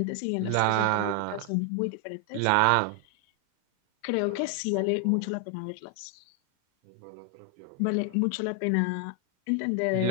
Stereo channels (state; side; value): different; both; correlation 0.00